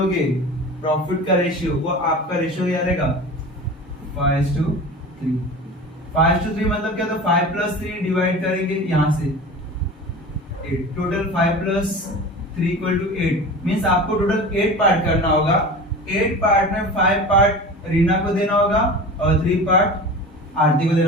प्रॉफिट का रेशियो वो आपका रेशियो क्या रहेगा 5:3। 5:3 मतलब क्या, तो 5 + 3 डिवाइड करेंगे यहाँ से 8, टोटल 5 + 3 इक्वल टू 8 मींस आपको टोटल 8 पार्ट करना होगा। 8 पार्ट में 5 पार्ट रीना को देना होगा और 3 पार्ट आरती को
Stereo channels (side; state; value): both; normal; correlation 0.34